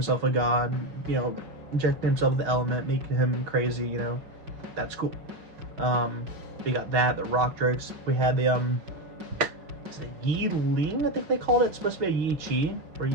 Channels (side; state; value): left; late; 5.6 ms